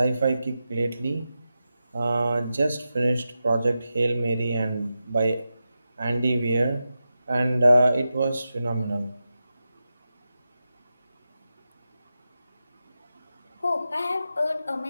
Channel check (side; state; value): both; inverted; correlation -0.91